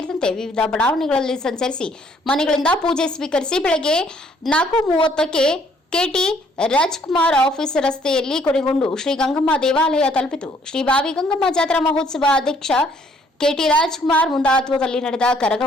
ವಿವಿಧ ಬಡಾವಣೆಗಳಲ್ಲಿ ಸಂಚರಿಸಿ ಮನೆಗಳಿಂದ ಪೂಜೆ ಸ್ವೀಕರಿಸಿ ಬೆಳಗ್ಗೆ 4:30ಕ್ಕೆ ಕೆಟಿ ರಾಜ್ಕುಮಾರ್ ಆಫೀಸ್ ರಸ್ತೆಯಲ್ಲಿ ಕೊನೆಗೊಂಡು ಶ್ರೀ ಗಂಗಮ್ಮ ದೇವಾಲಯ ತಲುಪಿತು. ಶ್ರೀ ಬಾವಿ ಗಂಗಮ್ಮ ಜಾತ್ರಾ ಮಹೋತ್ಸವ ಅಧ್ಯಕ್ಷ ಕೆಟಿ ರಾಜ್ಕುಮಾರ್ ಮುಂದಾತ್ವದಲ್ಲಿ ನಡೆದ ಕರಗ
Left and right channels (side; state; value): both; normal; correlation 0.64